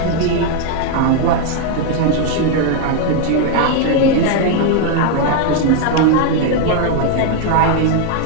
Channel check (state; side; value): different; both; correlation 0.01